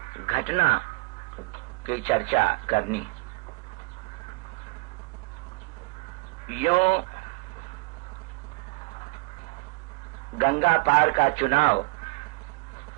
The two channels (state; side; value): quieter; left; 26.9 dB